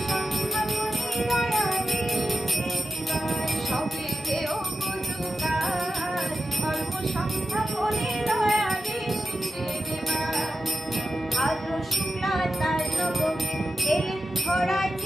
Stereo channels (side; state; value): both; normal; correlation 0.90